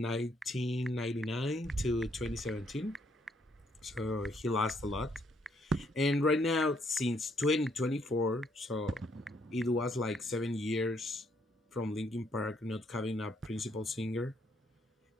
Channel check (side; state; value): both; normal; correlation 0.71